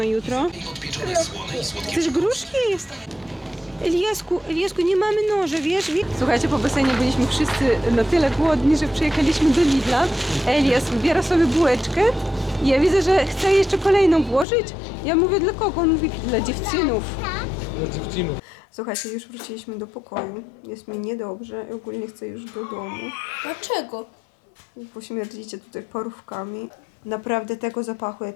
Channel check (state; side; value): drops out; right; at 14.5 s